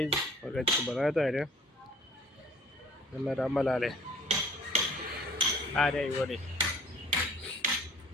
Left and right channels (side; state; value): both; normal; correlation 0.53